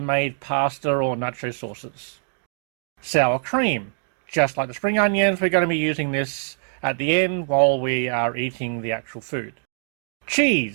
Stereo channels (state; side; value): silent; left; digital silence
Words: pasta or nacho sauces. Sour cream. Just like the spring onions, we're going to be using this at the end while we are eating the actual food.